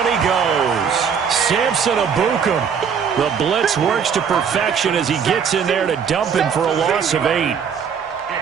he goes. Samson Abukum. The blitz works to perfection as he gets in there to dump him for a loss of 8.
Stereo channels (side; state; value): left; quieter; 7.0 dB